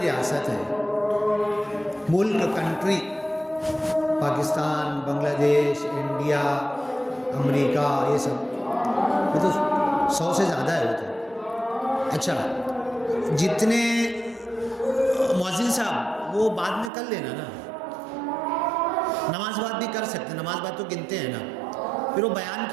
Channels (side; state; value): left; drops out; at 16.9 s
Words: ریاست ہے، ملک، کنٹری، پاکستان، بنگلہ دیش، انڈیا، امریکہ، یہ سب، یہ تو 100 سے زیادہ ہے وہ تو۔ اچھا، جتنے مؤذن صاحب وہ بعد میں کر لینا نا، نماز بعد بھی کر سکتے ہیں، نماز بعد تو گنتے ہیں نا، پھر وہ بیان